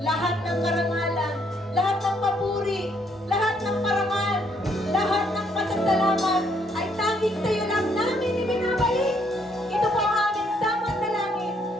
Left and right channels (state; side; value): normal; both; correlation 0.70